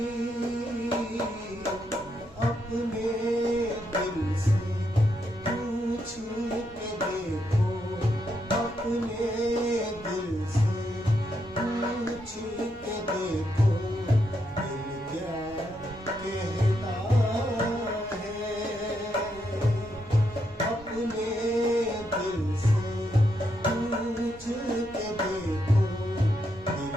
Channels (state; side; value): normal; both; correlation 0.80